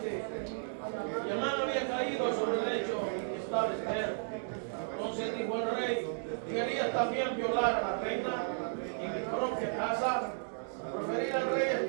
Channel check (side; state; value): left; silent; digital silence